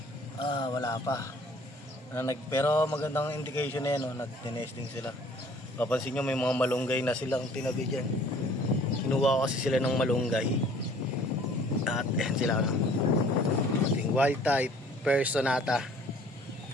Wala pa. Pero magandang indication na yan, no? Nag-nesting sila. Papansin nyo may mga malunggay na silang tinabi dyan. Kinuha ko kasi sila ng malunggay. At yan sila, no? Ating wild type Personata.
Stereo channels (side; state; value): both; normal; correlation 0.54